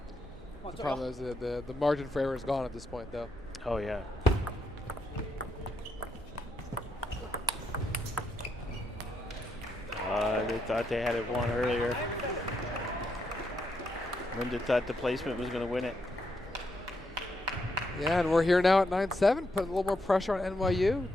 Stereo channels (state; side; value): normal; both; correlation 0.80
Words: The problem is the margin for error is gone at this point, though. Oh, yeah. They thought they had it won earlier. Linda thought the placement was going to win it. Yeah, and we're here now at 9-7, putting a little more pressure on NYU.